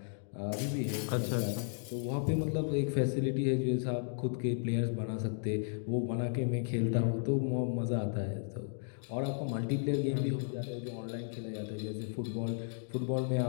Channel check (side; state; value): right; silent; digital silence